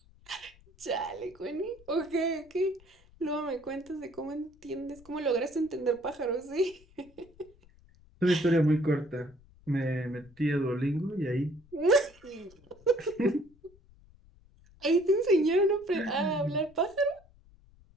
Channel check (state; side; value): noise; left; rumble, 27 dB below the sound